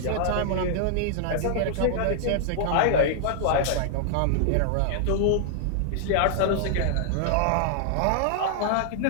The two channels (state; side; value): different; both; correlation -0.01